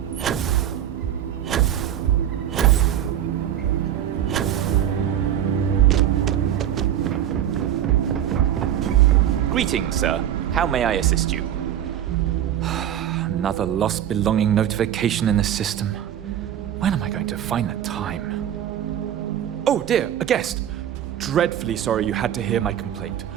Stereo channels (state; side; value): quieter; left; 10.7 dB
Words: Greetings, sir. How may I assist you? Another lost belonging notification in the system. When am I going to find the time? Oh dear, a guest! Dreadfully sorry you had to hear my complaint.